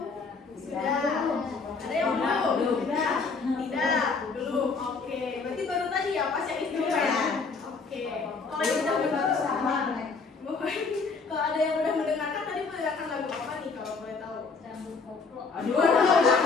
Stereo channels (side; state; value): right; quieter; 4.6 dB